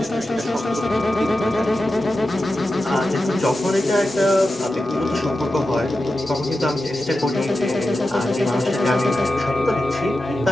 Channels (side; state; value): both; normal; correlation 0.91